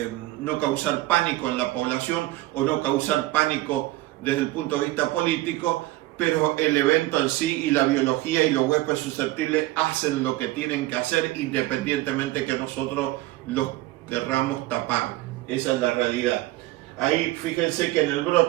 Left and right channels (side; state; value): left; quieter; 17.8 dB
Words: no causar pánico en la población o no causar pánico desde el punto de vista político, pero el evento en sí y la biología y los huéspedes susceptibles hacen lo que tienen que hacer independientemente que nosotros los querramos tapar. Esa es la realidad. Ahí fíjense que en el